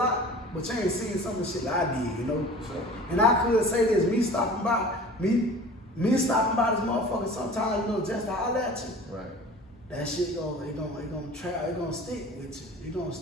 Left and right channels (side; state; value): both; normal; correlation 0.42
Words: but you ain't seen some of the shit that I did, you know? And I could say this, me stopping by this motherfucker sometimes, you know, just to holler at you. Right. That shit gonna stick with you. It gonna